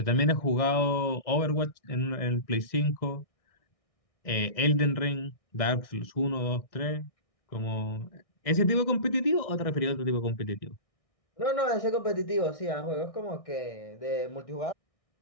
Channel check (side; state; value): right; late; 1.6 ms